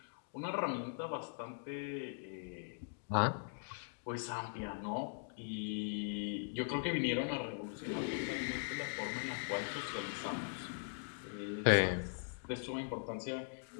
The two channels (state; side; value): silent; right; digital silence